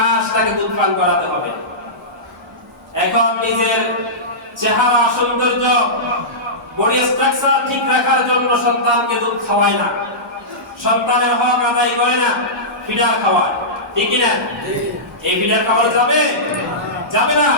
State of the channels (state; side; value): normal; both; correlation -0.17